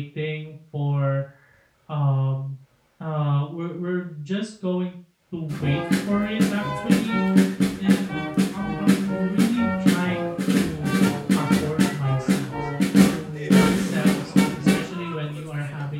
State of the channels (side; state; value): both; identical; correlation 1.00